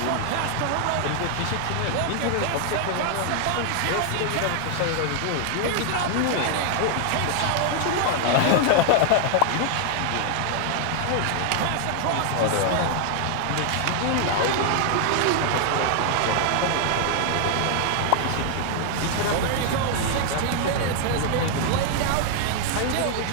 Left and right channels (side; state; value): both; different; correlation 0.00